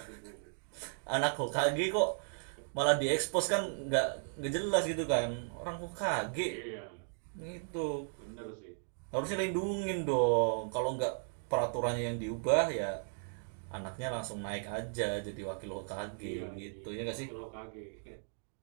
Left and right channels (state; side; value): silent; left; digital silence